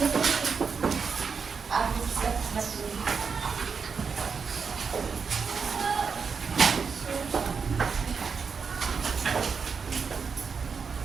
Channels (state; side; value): quieter; left; 5.7 dB